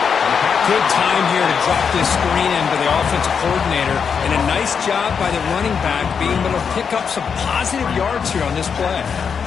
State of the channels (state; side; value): quieter; right; 6.5 dB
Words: Good time here to drop this screen into the offensive coordinator, and a nice job by the running back being able to pick up some positive yards here on this play.